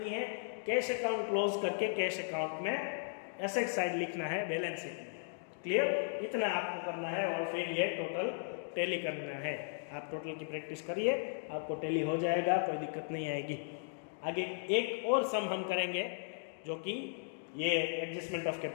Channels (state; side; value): silent; right; digital silence